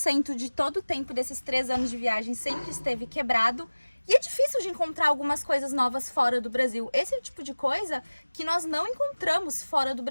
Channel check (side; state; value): both; inverted; correlation -1.00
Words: de todo o tempo desses 3 anos de viagem sempre esteve quebrado. E é difícil de encontrar algumas coisas novas fora do Brasil. Esse é o tipo de coisa que nós não encontramos fora do